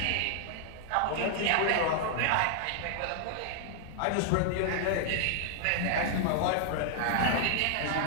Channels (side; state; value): both; different; correlation -0.01